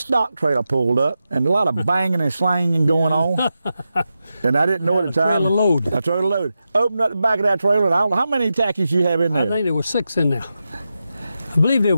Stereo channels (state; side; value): inverted; both; correlation -0.90